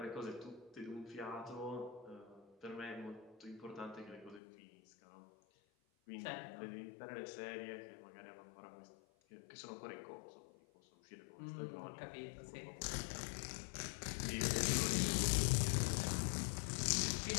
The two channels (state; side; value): drops out; right; at 4.4 s